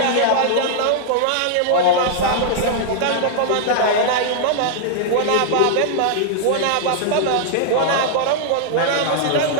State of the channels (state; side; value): different; both; correlation -0.01